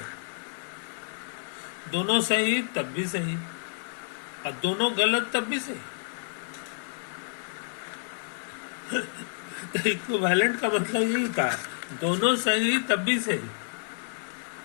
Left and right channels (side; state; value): right; silent; digital silence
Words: दोनों सही तब भी सही और दोनों गलत तब भी सही। तो इक्विवेलेंट का मतलब यही होता है, दोनों सही तब भी सही